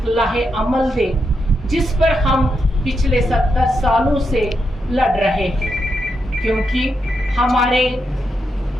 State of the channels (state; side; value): normal; both; correlation 0.83